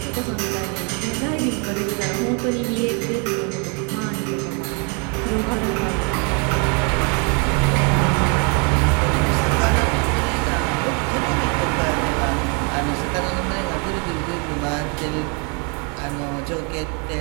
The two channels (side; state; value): left; quieter; 35.6 dB